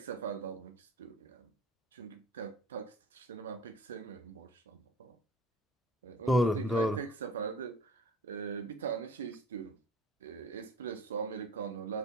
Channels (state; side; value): normal; both; correlation 0.46